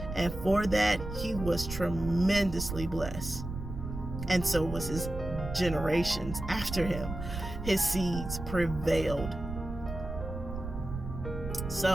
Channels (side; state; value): right; noise; rumble, 8 dB below the sound